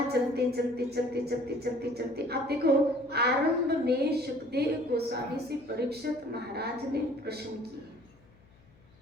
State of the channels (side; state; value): left; noise; hum, 29 dB below the sound